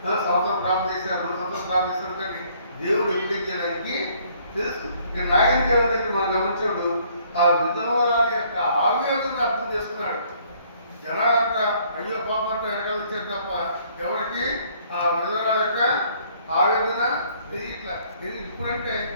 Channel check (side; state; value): both; inverted; correlation -0.62